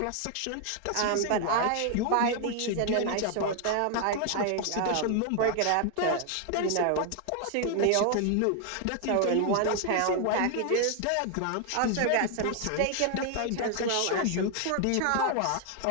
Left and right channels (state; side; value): different; both; correlation 0.00